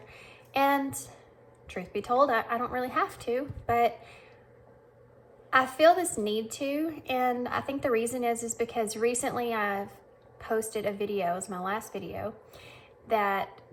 And truth be told, I don't really have to, but I feel this need to. And I think the reason is because recently I've posted a video, it was my last video, that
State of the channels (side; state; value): both; identical; correlation 1.00